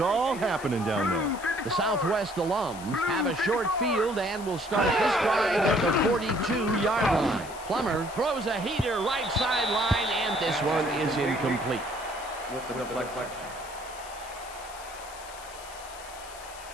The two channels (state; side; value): noise; left; hiss, 16 dB below the sound